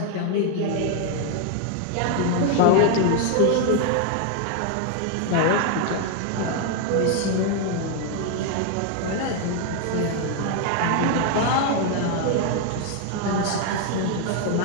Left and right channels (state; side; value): different; both; correlation 0.01